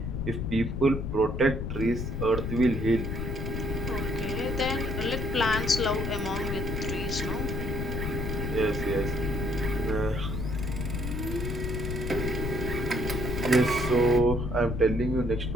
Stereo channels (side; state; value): left; noise; rumble, 3 dB below the sound